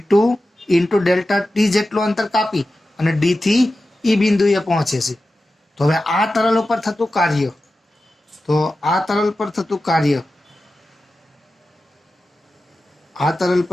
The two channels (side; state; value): both; normal; correlation 0.93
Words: ઇન્ટુ ડેલ્ટા ટી જેટલું અંતર કાપી અને ડી થી ઈ બિંદુએ પહોંચે છે. તો હવે આ તરલ ઉપર થતું કાર્ય,